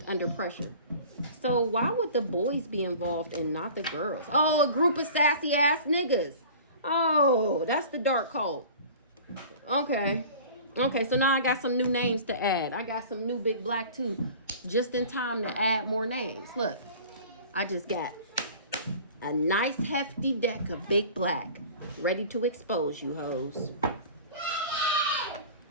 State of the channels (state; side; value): inverted; both; correlation -0.42